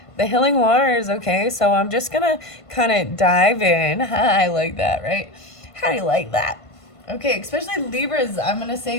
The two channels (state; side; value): late; right; 1.5 ms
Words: the healing waters. Okay, so I'm just gonna kind of dive in. I like that, right? How do you like that? Okay, especially Libras, I'm gonna